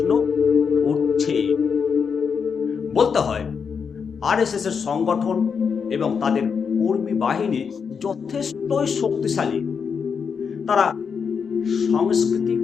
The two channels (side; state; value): right; quieter; 6.2 dB